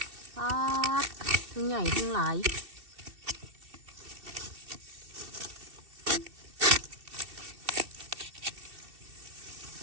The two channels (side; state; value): left; late; 2.7 ms